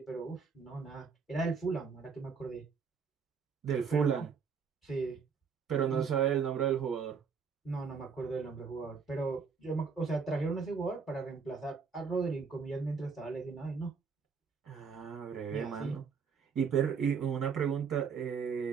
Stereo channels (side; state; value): left; quieter; 5.9 dB